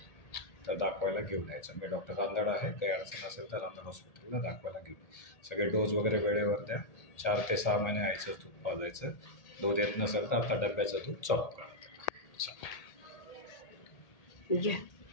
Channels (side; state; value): right; late; 1.8 ms